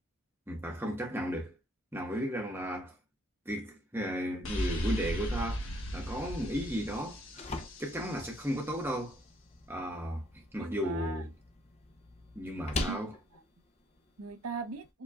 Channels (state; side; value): normal; both; correlation 0.68